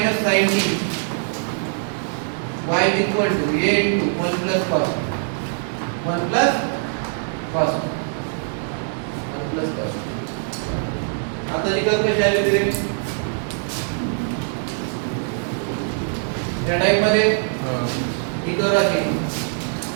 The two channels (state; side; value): silent; left; 64 dB below the other